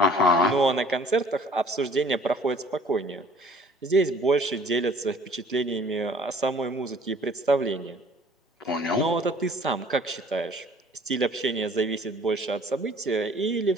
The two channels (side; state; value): both; normal; correlation 0.53